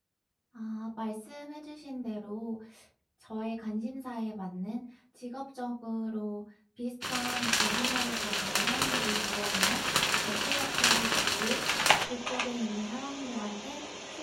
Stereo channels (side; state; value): both; identical; correlation 1.00